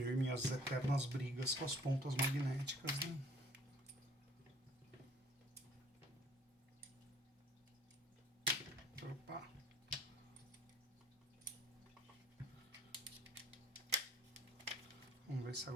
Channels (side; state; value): both; normal; correlation 0.53